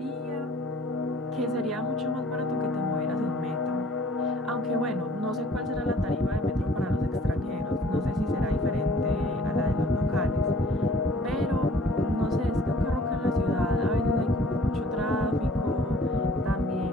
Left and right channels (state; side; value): normal; both; correlation 0.54